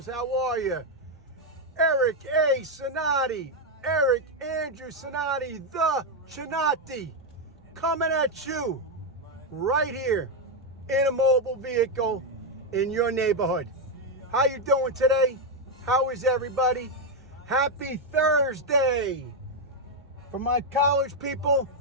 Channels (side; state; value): both; normal; correlation 0.03